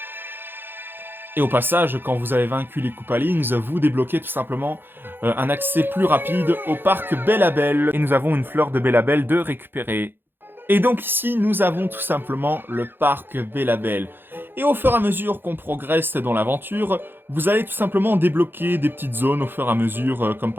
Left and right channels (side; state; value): left; late; 0.10 ms